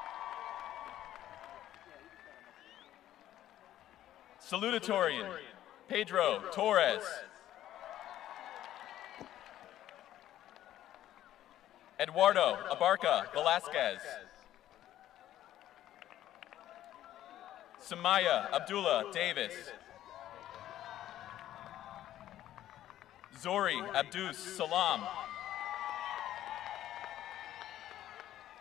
Salutatorian, Pedro Torres. Eduardo Abarca Velasquez. Samaya Abdullah Davis. Zori Abdus Salam.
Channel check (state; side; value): quieter; right; 12.8 dB